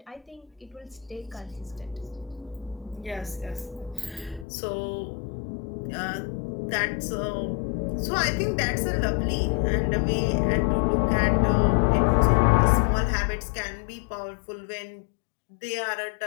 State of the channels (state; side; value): drops out; right; at 4.5 s